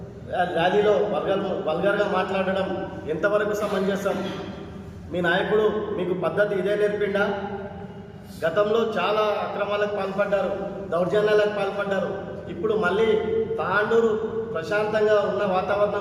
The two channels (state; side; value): identical; both; correlation 1.00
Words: ర్యాలీలో వల్గర్గా మాట్లాడడం ఎంతవరకు సమంజసం? మీ నాయకుడు మీకు పద్ధతి ఇదే నేర్పిండా? గతంలో చాలా అక్రమాలకు పాల్పడ్డారు, దౌర్జన్యాలకు పాల్పడ్డారు. ఇప్పుడు మళ్ళీ తాండూరు ప్రశాంతంగా ఉన్న